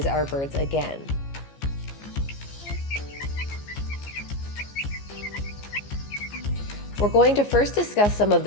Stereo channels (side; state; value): right; late; 14 ms